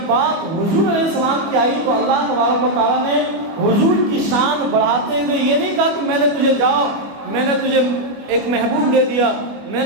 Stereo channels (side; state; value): left; late; 25 ms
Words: بات حضور علیہ السلام کی آئی تو اللہ تبارک و تعالیٰ نے حضور کی شان بڑھاتے ہوئے یہ نہیں کہا کہ میں نے تجھے جاؤ، میں نے تجھے ایک محبوب دے دیا، میں